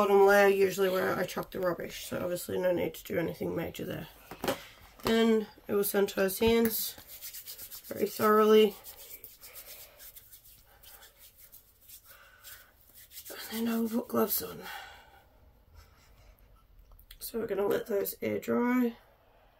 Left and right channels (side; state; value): both; identical; correlation 1.00